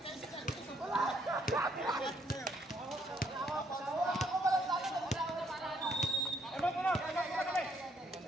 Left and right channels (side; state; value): both; normal; correlation 0.70